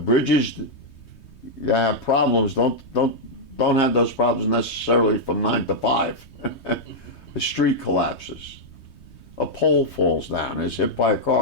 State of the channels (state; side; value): late; right; 3.2 ms